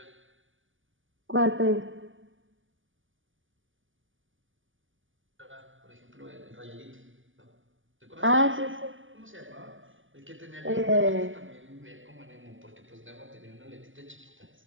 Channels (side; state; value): left; late; 0.57 ms